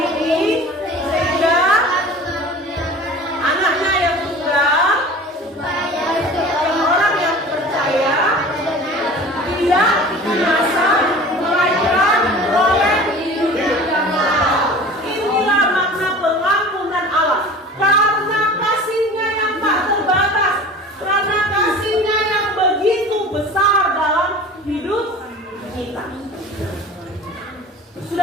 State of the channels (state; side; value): normal; both; correlation 0.40